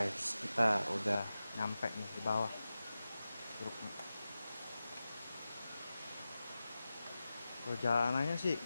kita udah nyampe nih di bawah curugnya. Perjalanannya sih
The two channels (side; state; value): both; inverted; correlation -0.94